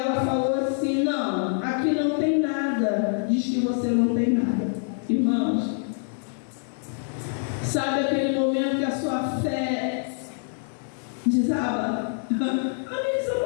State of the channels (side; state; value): right; silent; digital silence